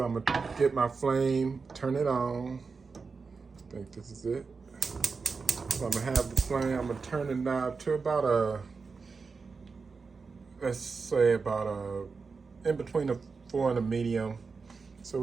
I'm going to get my flame, turn it on. I think this is it. So I'm going to have the flame, I'm going to turn the knob to about let's say in between a 4 and a medium. So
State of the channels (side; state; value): left; quieter; 4.8 dB